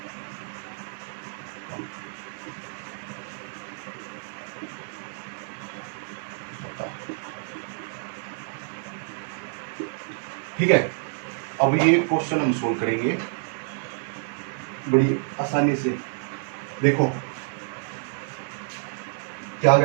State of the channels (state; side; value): silent; left; 58 dB below the other